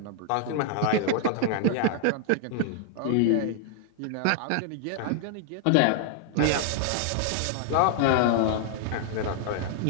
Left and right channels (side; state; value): both; different; correlation -0.01